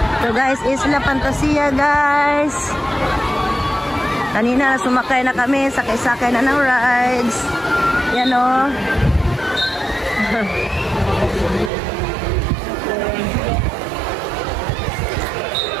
So guys, Isla Fantasia guys. Kanina sumakay na kami, sakay-sakay na ng rides. Yan o.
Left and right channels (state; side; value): drops out; left; at 11.7 s